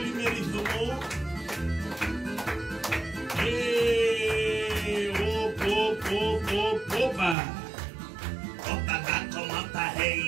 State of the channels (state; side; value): drops out; left; at 7.4 s